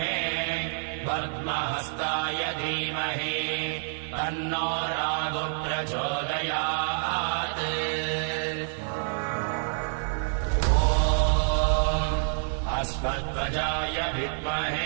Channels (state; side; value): silent; left; digital silence